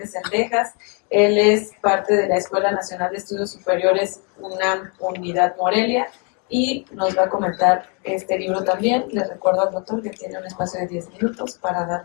Sendejas. Él es parte de la Escuela Nacional de Estudios Superiores UNAM Unidad Morelia y nos va a comentar este libro también. Les recuerdo al doctor que tiene un espacio de 10 minutos para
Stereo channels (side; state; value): right; quieter; 36.0 dB